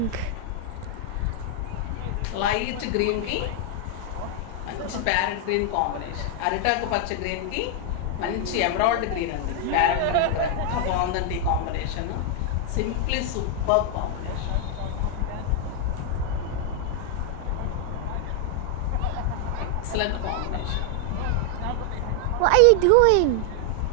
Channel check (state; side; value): different; both; correlation 0.00